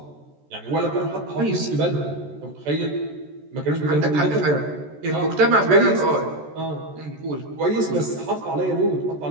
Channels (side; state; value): left; late; 14 ms